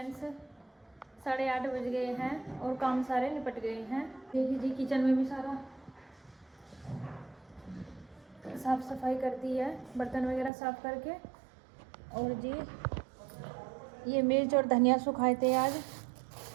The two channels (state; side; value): drops out; left; at 10.5 s